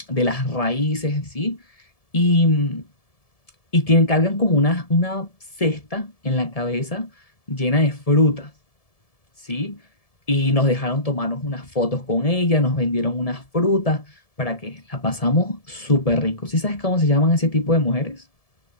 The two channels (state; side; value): late; right; 1.7 ms